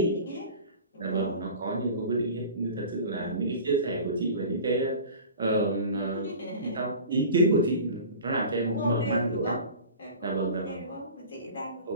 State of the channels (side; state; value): both; inverted; correlation -0.38